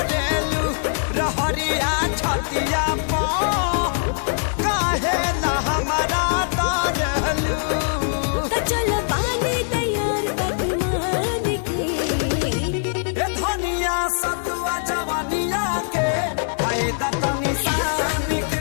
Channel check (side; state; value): right; silent; digital silence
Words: रहरिया छतिया पो काहे ना हमारा तारलू त चल पानी तैयार पकवान के ए धनिया सतुआ जवानिया के आए तनी सान